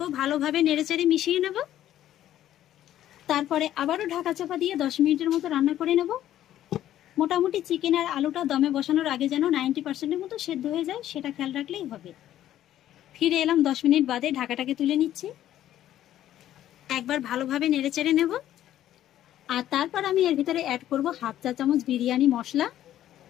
ভালোভাবে নেড়েচেড়ে মিশিয়ে নেব। তারপরে আবারও ঢাকা চাপা দিয়ে 10 মিনিটের মতো রান্না করে নেব। মোটামুটি চিকেন আর আলুটা দমে বসানোর আগে যেন 90%-এর মতো সেদ্ধ হয়ে যায়, সেটা খেয়াল রাখলেই হবে। ফিরে এলাম 10 মিনিট বাদে, ঢাকাটাকে তুলে নিচ্ছি। একবার ভালোভাবে নেড়েচেড়ে নেব। আর তারপর আমি এর ভিতরে অ্যাড করব হাফ চা চামচ বিরিয়ানি মশলা,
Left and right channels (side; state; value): right; quieter; 12.3 dB